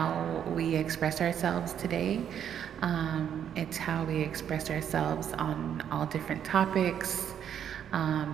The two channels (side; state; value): left; quieter; 9.1 dB